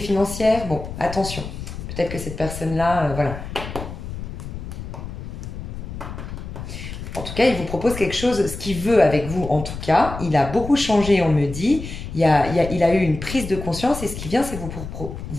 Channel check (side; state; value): left; noise; rumble, 9 dB below the sound